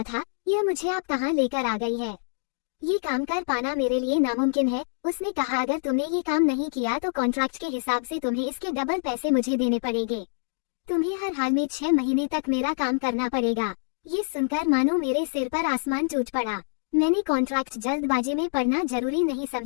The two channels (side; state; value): right; silent; digital silence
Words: था, यह मुझे आप कहाँ लेकर आ गई है। ये काम कर पाना मेरे लिए नामुमकिन है। उसने कहा, अगर तुमने ये काम नहीं किया तो कॉन्ट्रैक्ट के हिसाब से तुम्हें इसके डबल पैसे मुझे देने पड़ेंगे। तुम्हें हर हाल में 6 महीने तक मेरा काम करना पड़ेगा। ये सुनकर मानो मेरे सिर पर आसमान टूट पड़ा। मैंने कॉन्ट्रैक्ट जल्दबाजी में पढ़ना जरूरी नहीं